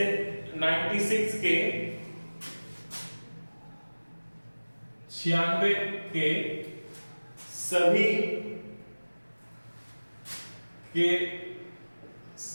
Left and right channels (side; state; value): both; inverted; correlation -1.00